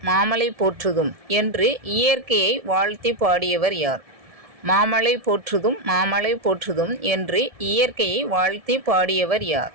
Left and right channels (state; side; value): late; left; 1.7 ms